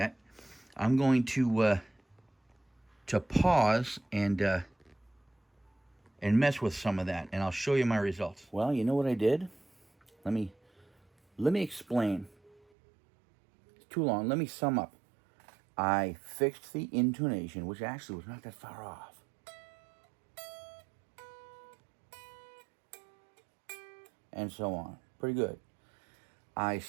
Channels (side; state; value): left; drops out; at 12.6 s